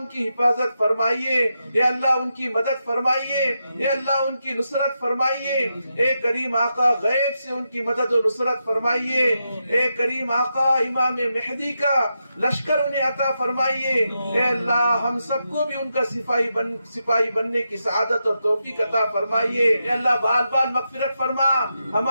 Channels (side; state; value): both; inverted; correlation -0.86